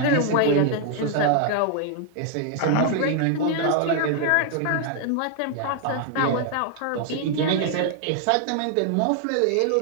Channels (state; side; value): different; both; correlation 0.00